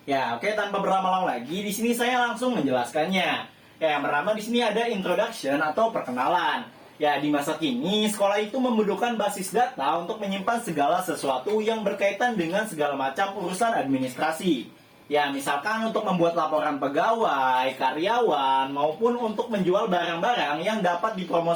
Ya, oke, tanpa berlama-lama lagi, di sini saya langsung menjelaskannya. Ya, yang pertama di sini ada introduction atau perkenalan. Ya, di masa kini, sekolah itu membutuhkan basis data untuk menyimpan segala sesuatu yang berkaitan dengan segala macam urusan administrasi. Ya, misalkan untuk membuat laporan pegawai, karyawan, maupun untuk menjual barang-barang yang dapat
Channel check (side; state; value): both; identical; correlation 1.00